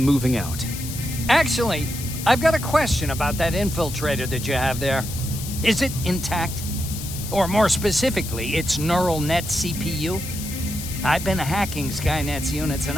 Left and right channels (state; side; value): noise; left; hiss, 9 dB below the sound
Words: moving out. Actually, I've got a question about that infiltrator that you have there. Is it intact? Or more specifically, its neural net CPU? I've been hacking Skynet's units and